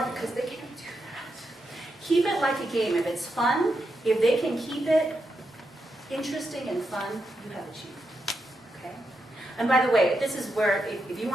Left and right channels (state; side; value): normal; both; correlation 0.84